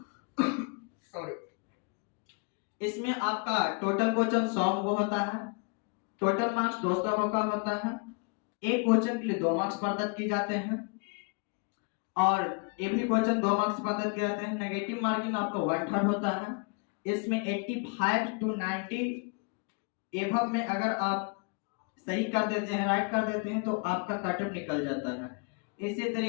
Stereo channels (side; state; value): right; quieter; 34.5 dB